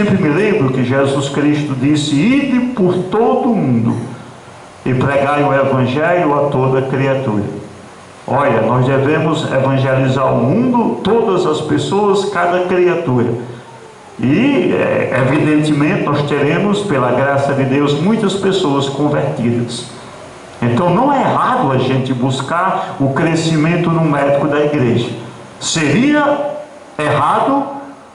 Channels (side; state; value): both; identical; correlation 1.00